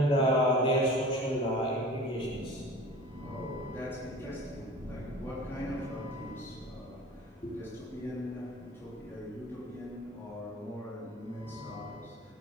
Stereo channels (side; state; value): both; normal; correlation 0.41